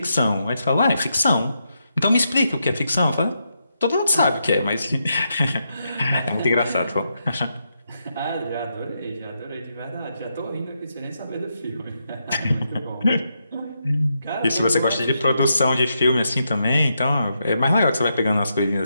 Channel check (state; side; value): inverted; both; correlation -0.82